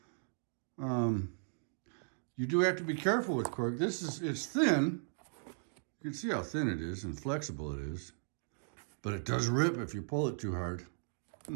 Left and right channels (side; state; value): left; silent; digital silence